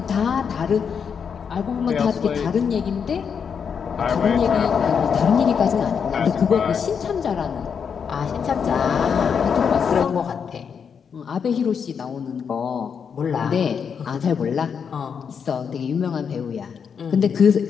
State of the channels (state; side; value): quieter; right; 6.7 dB